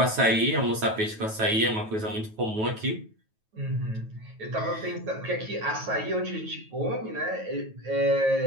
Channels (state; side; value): late; left; 9.3 ms